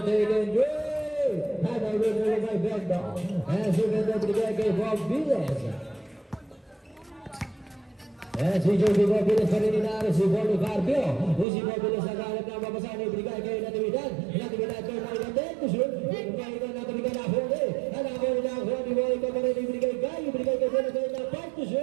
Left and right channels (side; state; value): left; drops out; at 11.5 s